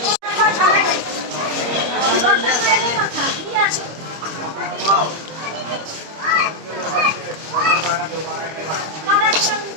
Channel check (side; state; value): left; late; 26 ms